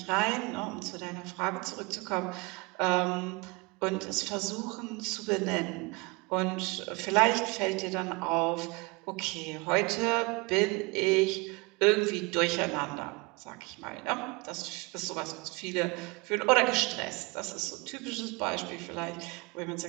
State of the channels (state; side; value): quieter; left; 27.4 dB